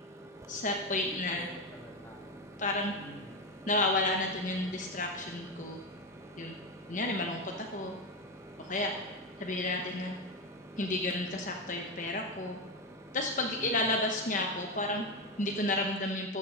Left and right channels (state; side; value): normal; both; correlation 0.13